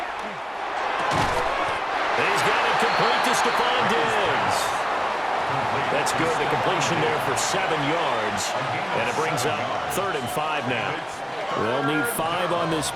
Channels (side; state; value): both; identical; correlation 1.00